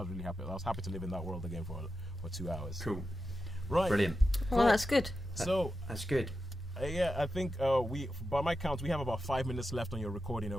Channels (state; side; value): normal; both; correlation 0.90